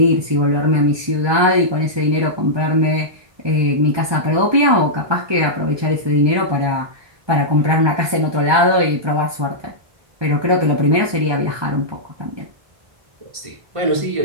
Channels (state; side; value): late; left; 1.2 ms